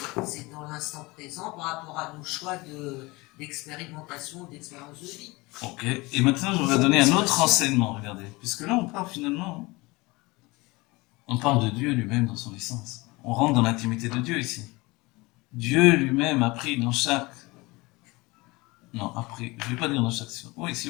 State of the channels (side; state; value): right; quieter; 23.2 dB